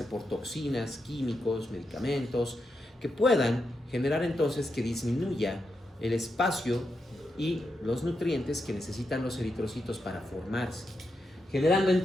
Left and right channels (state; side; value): normal; both; correlation 0.85